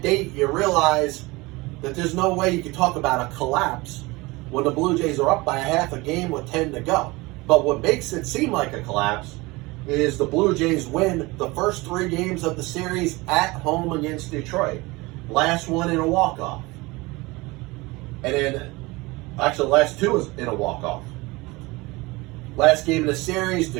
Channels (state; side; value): quieter; left; 22.8 dB